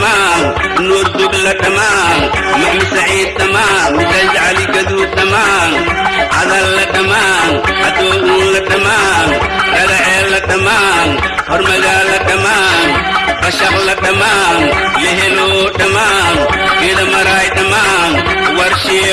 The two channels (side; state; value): both; identical; correlation 1.00